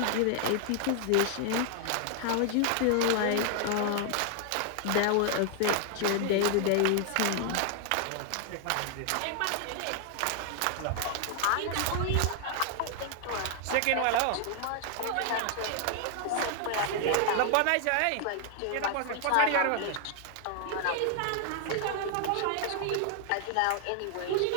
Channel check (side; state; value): both; different; correlation 0.00